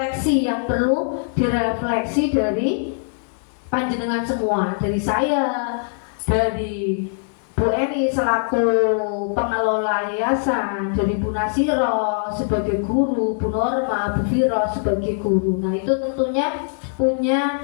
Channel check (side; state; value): right; silent; digital silence